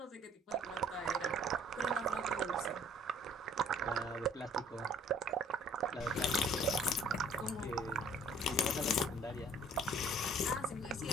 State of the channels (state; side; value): normal; both; correlation 0.56